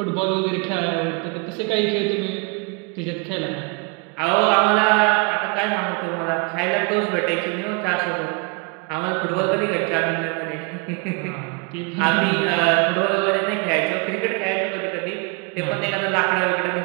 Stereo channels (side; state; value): left; quieter; 30.4 dB